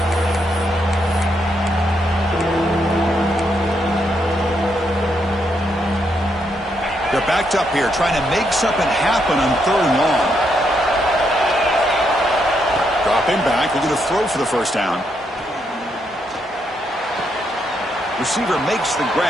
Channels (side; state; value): both; normal; correlation 0.78